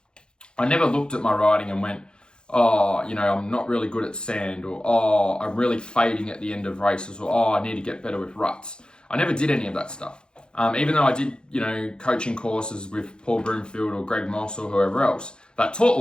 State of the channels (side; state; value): right; late; 0.049 ms